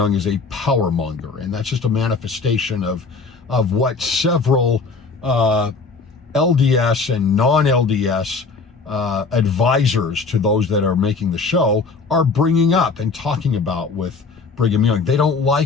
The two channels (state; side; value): quieter; right; 4.4 dB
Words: is a power monger, and that's just a manifestation of what several LDS and non-LDS advisors to those that are making the show are bringing up and talking about with Brigham Young. They don't